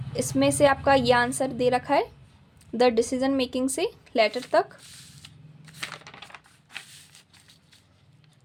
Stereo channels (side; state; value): both; identical; correlation 1.00